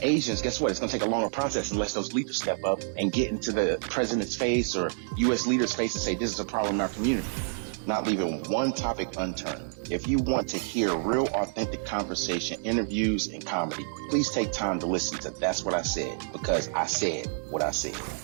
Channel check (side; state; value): left; silent; digital silence